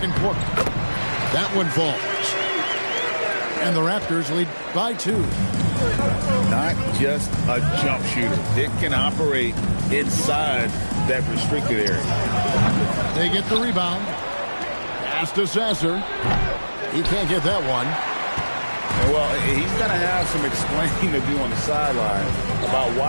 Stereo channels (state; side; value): inverted; both; correlation -1.00